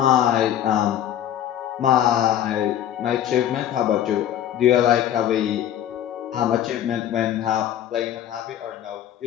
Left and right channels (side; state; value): right; quieter; 10.9 dB